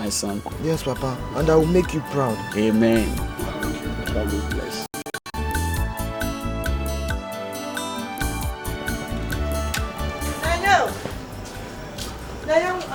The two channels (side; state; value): both; identical; correlation 1.00